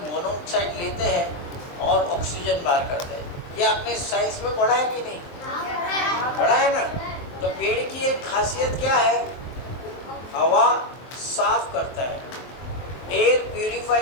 मोनोऑक्साइड लेते हैं और ऑक्सीजन बाहर करते हैं। ये आपने साइंस में पढ़ा है कि नहीं? पढ़ा है ना। तो पेड़ की एक खासियत क्या है, हवा साफ करता है, एयर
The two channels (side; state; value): right; late; 23 ms